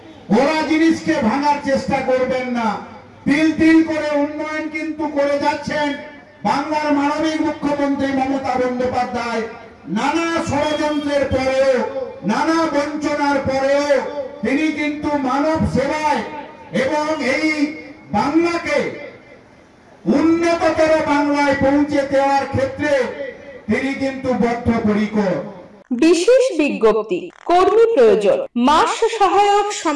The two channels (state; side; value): identical; both; correlation 1.00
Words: ওরা জিনিসকে ভাঙার চেষ্টা করবেন না। তিল তিল করে উন্নয়ন কিন্তু করে যাচ্ছেন বাংলার মানবিক মুখ্যমন্ত্রী মমতা বন্দ্যোপাধ্যায়। নানা ষড়যন্ত্রের পরেও, নানা বঞ্চনার পরেও তিনি কিন্তু মানব সেবায় এবং এই বাংলাকে উন্নততর বাংলায় পৌঁছে দেওয়ার ক্ষেত্রে তিনি কিন্তু বদ্ধপরিকর। বিশেষ বিজ্ঞপ্তি, কর্মী প্রয়োজন। মাস সহায়ক